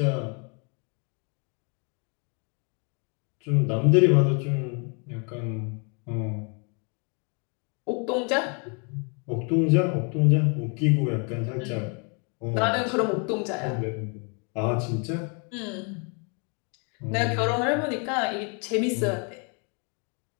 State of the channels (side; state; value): right; quieter; 36.1 dB